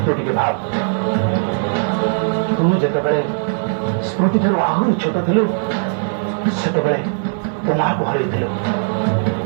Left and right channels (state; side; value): silent; left; digital silence